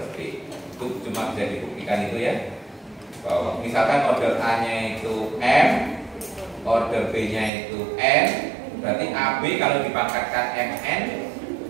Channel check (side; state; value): left; drops out; at 7.5 s